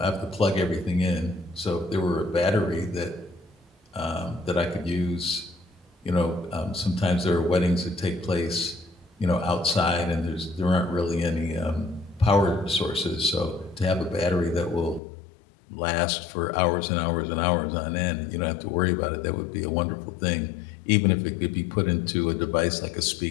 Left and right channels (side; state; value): right; drops out; at 15.0 s